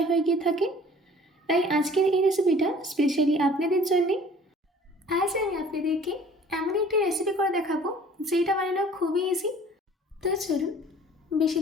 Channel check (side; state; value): both; normal; correlation 0.50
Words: হয়ে গিয়ে থাকে। তাই আজকের এই রেসিপিটা স্পেশালি আপনাদের জন্যে। আজ আমি আপনাদেরকে এমন একটি রেসিপি করে দেখাবো যেটা বানানো খুবই ইজি। তো চলুন বেশি